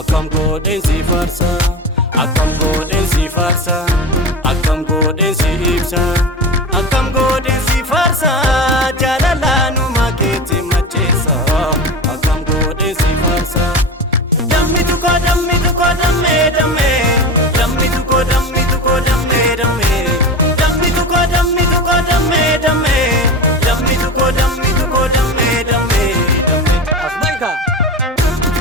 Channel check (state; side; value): normal; both; correlation 0.27